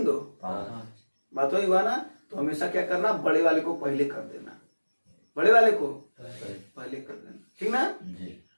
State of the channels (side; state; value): both; inverted; correlation -1.00